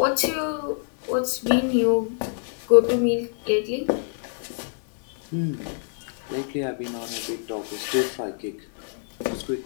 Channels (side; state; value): right; silent; 61 dB below the other